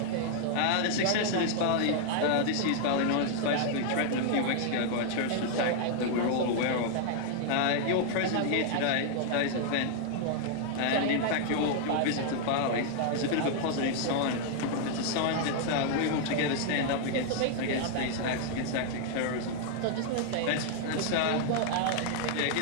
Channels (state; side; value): different; both; correlation 0.00